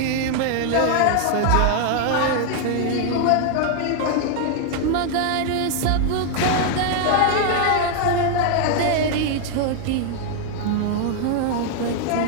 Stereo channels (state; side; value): different; both; correlation 0.00